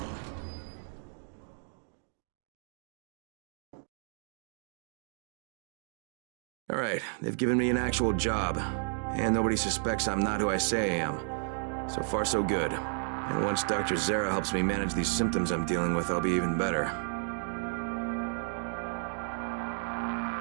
All right, they've given me an actual job. And nobody suspects I'm not who I say I am. So far, so good. And once Dr. Zere helps me manage these symptoms I'm dealing with, I'll be even better.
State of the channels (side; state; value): left; silent; digital silence